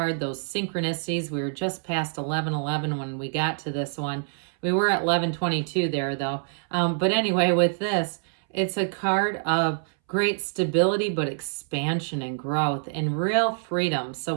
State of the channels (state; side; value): silent; left; 61 dB below the other